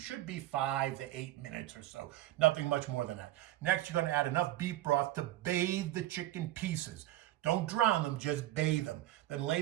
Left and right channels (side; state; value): left; quieter; 15.1 dB